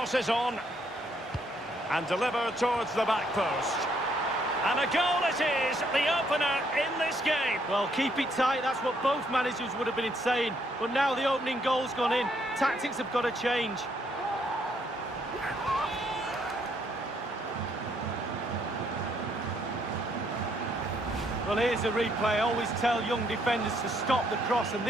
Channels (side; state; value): both; normal; correlation 0.71